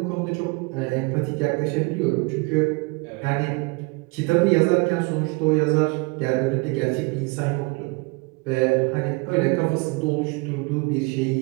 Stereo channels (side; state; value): left; quieter; 28.1 dB